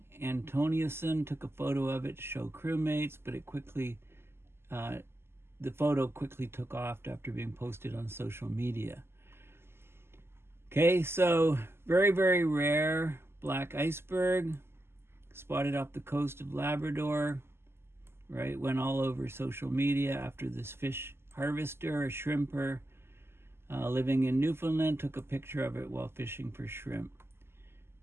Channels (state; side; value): late; left; 0.12 ms